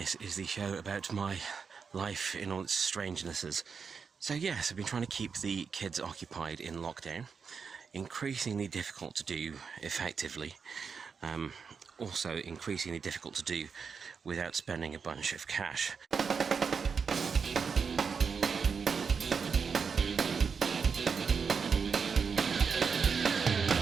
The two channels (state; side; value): quieter; left; 5.8 dB